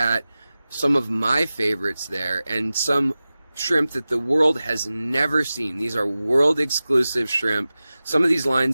some of my favorites there and some shrimp that the world has never seen. These are world exclusive shrimp. Some of these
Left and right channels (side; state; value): both; inverted; correlation -0.96